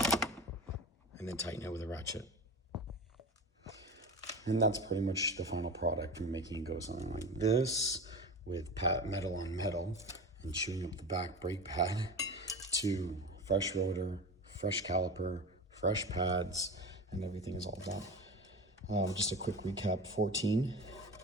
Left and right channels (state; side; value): normal; both; correlation 0.29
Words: And then tighten it with a ratchet. And that's pretty much the final product from making it go something like this with metal on metal and chewing up the back brake pad to fresh rotor, fresh caliper, fresh pads, and everything is all done. Just a quick recap: 14,